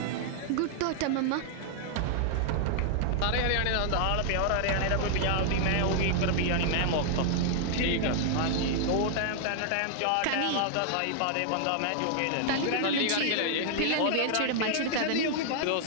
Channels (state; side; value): different; both; correlation -0.01